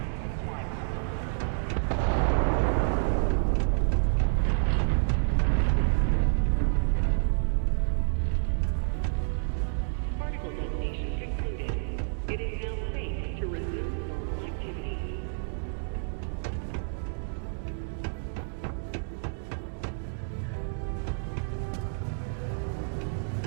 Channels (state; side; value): silent; left; digital silence